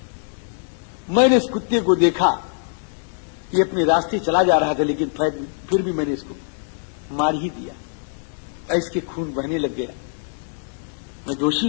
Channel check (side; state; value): right; silent; digital silence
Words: मैंने इस कुत्ते को देखा, ये अपने रास्ते चला जा रहा था, लेकिन फिर भी मैंने इसको मार ही दिया। इसके खून बहने लग गया। मैं दोषी